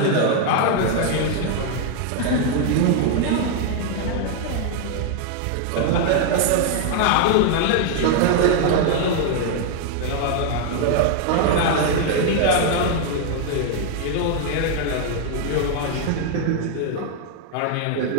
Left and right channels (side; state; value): both; different; correlation 0.00